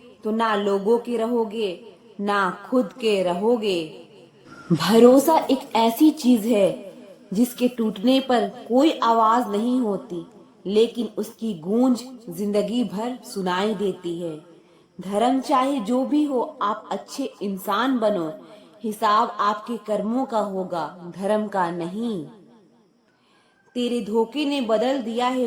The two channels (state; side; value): identical; both; correlation 1.00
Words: तो ना लोगों के रहोगे, ना खुद के रहोगे। भरोसा एक ऐसी चीज है जिसके टूटने पर कोई आवाज नहीं होती, लेकिन उसकी गूंज जिंदगी भर सुनाई देती है। धर्म चाहे जो भी हो, आप अच्छे इंसान बनो। हिसाब आपके कर्मों का होगा, धर्म का नहीं। तेरे धोखे ने बदल दिया है